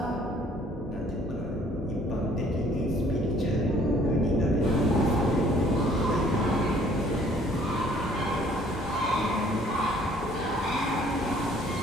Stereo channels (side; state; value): both; normal; correlation 0.58